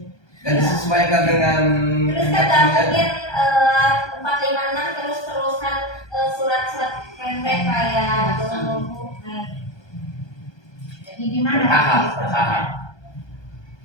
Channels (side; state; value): right; late; 1.2 ms